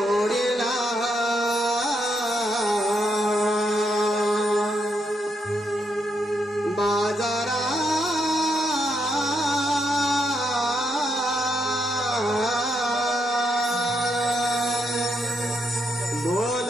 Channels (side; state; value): both; normal; correlation 0.79